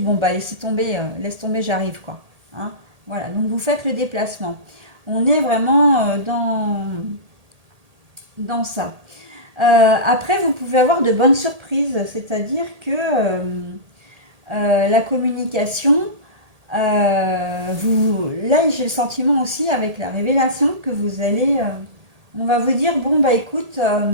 bon, bah, laisse tomber, j'arrive, quoi. Hein. Voilà, donc vous faites le déplacement. On est vraiment dans ça. Après, vous pouvez avoir de bonnes surprises, c'est-à-dire que la communication, là, j'ai le sentiment aussi avec la révélation que vous allez, on va vous dire, bon bah écoute,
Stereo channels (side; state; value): left; late; 1.8 ms